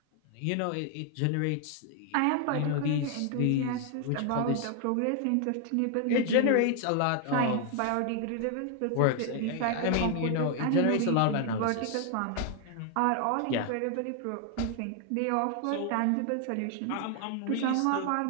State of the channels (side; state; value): both; different; correlation 0.00